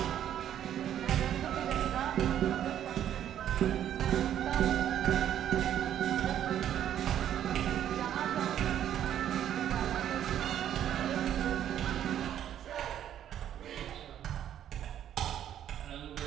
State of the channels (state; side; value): quieter; left; 10.6 dB